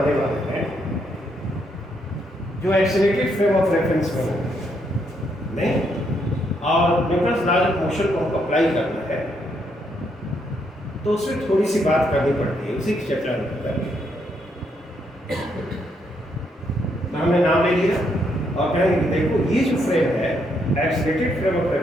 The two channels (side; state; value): both; normal; correlation 0.75